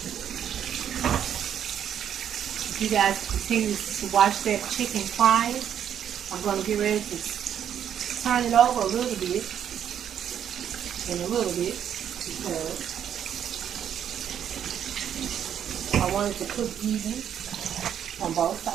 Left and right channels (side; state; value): left; quieter; 9.3 dB